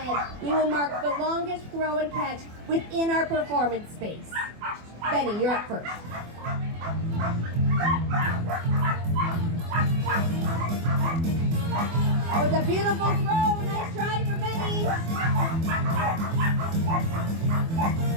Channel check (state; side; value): late; left; 24 ms